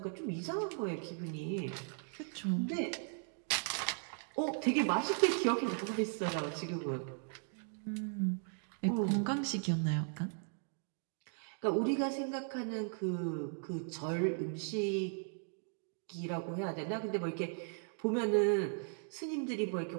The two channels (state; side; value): silent; left; 53 dB below the other